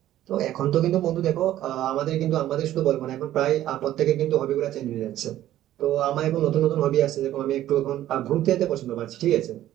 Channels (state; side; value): quieter; left; 13.2 dB